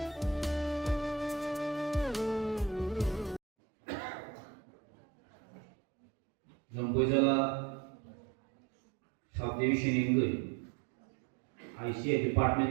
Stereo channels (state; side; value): drops out; left; at 3.4 s